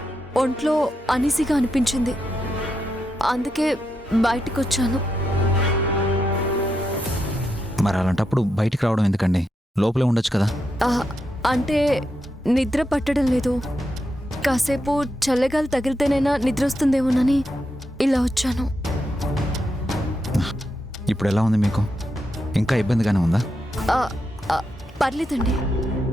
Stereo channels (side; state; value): both; normal; correlation 0.84